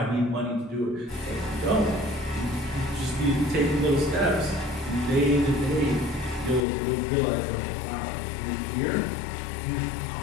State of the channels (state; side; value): drops out; right; at 6.6 s